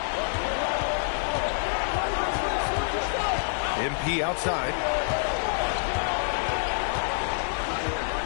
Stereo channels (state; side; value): silent; right; 60 dB below the other